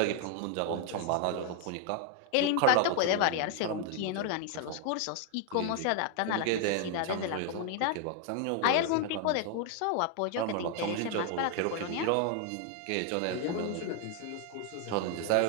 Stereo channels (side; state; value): both; different; correlation 0.00